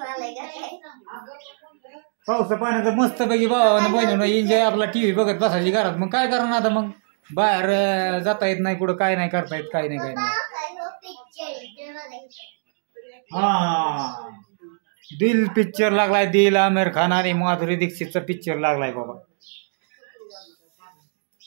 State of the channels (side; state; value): left; silent; digital silence